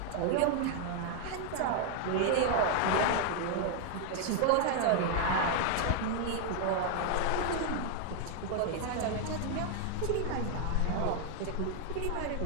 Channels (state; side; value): different; both; correlation 0.00